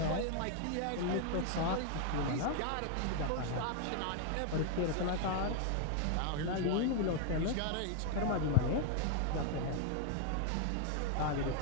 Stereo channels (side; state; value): both; different; correlation 0.00